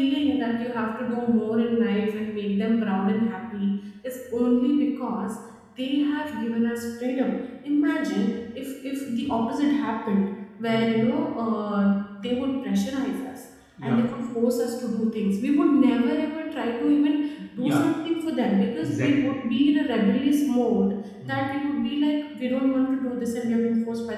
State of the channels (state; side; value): identical; both; correlation 1.00